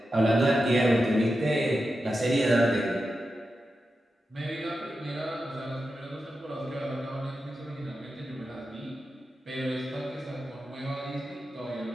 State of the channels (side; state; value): both; normal; correlation 0.90